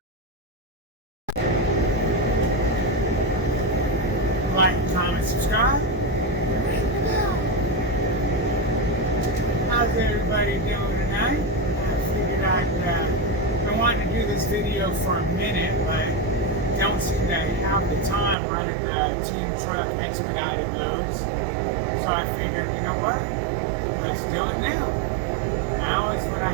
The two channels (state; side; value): drops out; left; at 18.4 s